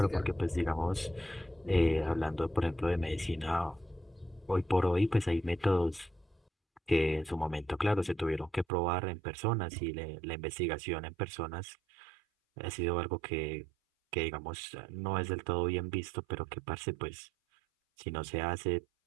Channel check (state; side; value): drops out; left; at 8.7 s